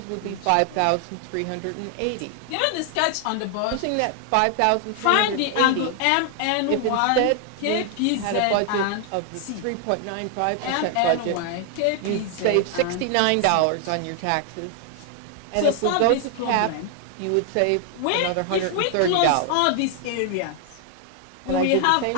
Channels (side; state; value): both; different; correlation 0.00